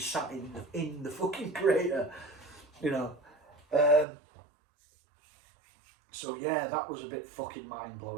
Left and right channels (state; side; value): drops out; left; at 4.0 s